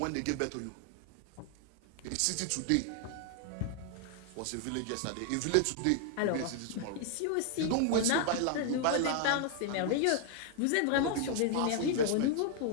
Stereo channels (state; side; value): different; both; correlation 0.00